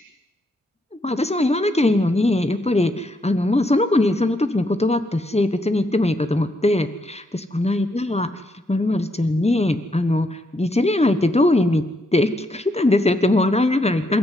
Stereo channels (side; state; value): both; normal; correlation 0.76